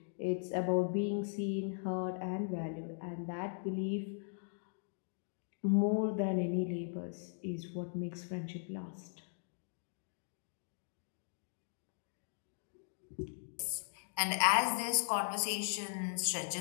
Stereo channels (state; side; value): silent; right; digital silence